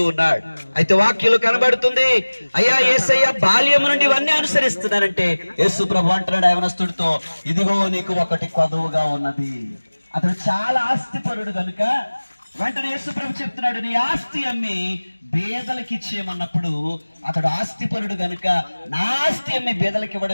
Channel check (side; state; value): both; inverted; correlation -1.00